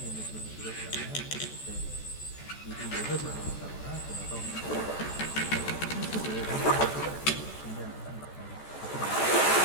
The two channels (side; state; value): right; late; 14 ms